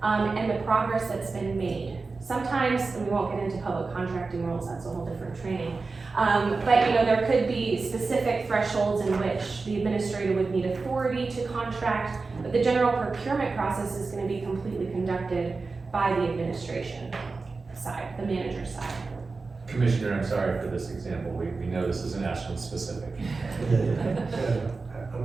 and the progress that's been made. Sometimes, and we won't get into public contracting rules, that's a whole different training. But there could be specific thresholds in which the administrator would need authority to contract, but the general procurement process is going to be completely conducted by the administration side, the manager side. Commissioner, I'm sorry for this example. We know this isn't Ashland specific.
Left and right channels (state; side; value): quieter; left; 4.1 dB